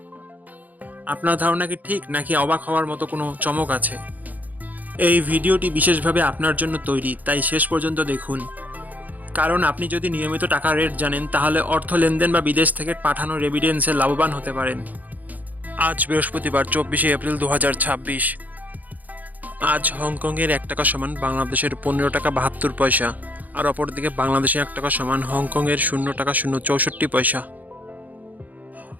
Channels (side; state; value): left; late; 0.081 ms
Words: আপনার ধারণা কি ঠিক, নাকি অবাক হওয়ার মতো কোনো চমক আছে? এই ভিডিওটি বিশেষভাবে আপনার জন্য তৈরি, তাই শেষ পর্যন্ত দেখুন। কারণ আপনি যদি নিয়মিত টাকার রেট জানেন, তাহলে অর্থ লেনদেন বা বিদেশ থেকে পাঠানো রেমিটেন্সে লাভবান হতে পারেন। আজ বৃহস্পতিবার 24শে এপ্রিল 2026। আজ হংকংয়ের $1 সমান বাংলাদেশের $15.72, আর অপরদিকে বাংলাদেশে $1 সমান হংকংয়ের $0.064।